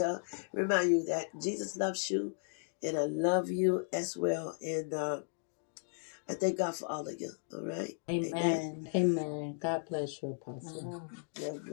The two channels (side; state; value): right; silent; digital silence